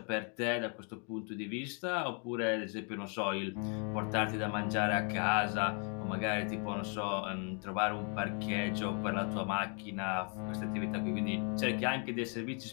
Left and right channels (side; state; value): right; quieter; 39.7 dB